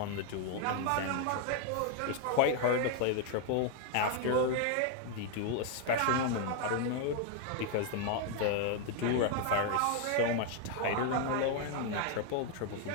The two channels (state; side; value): different; both; correlation 0.00